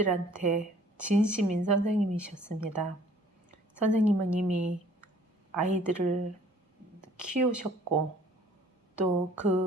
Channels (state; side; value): normal; both; correlation 0.55